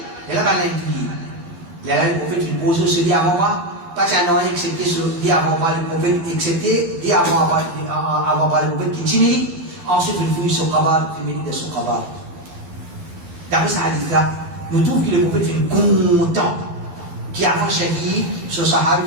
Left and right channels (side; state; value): left; late; 12 ms